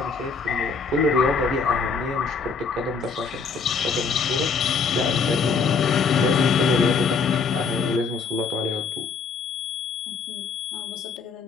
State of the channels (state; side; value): quieter; right; 5.1 dB